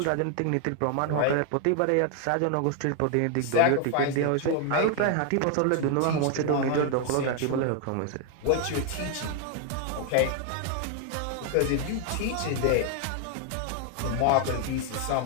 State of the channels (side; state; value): both; different; correlation 0.00